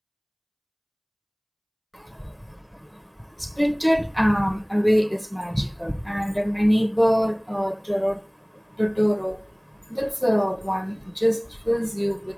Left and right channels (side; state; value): both; identical; correlation 1.00